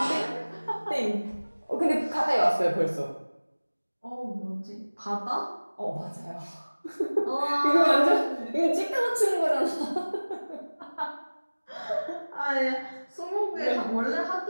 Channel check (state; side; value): inverted; both; correlation -1.00